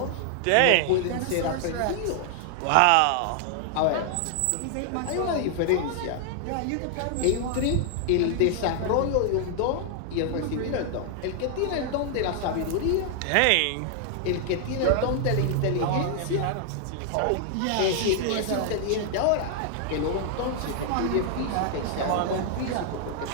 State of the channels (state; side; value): different; both; correlation 0.00